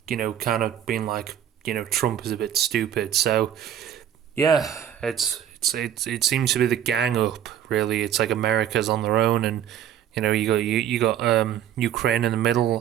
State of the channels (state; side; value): quieter; left; 10.1 dB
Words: kind of been like, Trump is a bit stupid. So, yeah, it seems to be the gang up, really. It's like America's on their own, and, you got Ukraine in the